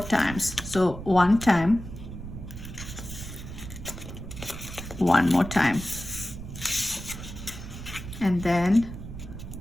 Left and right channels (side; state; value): right; noise; rumble, 10 dB below the sound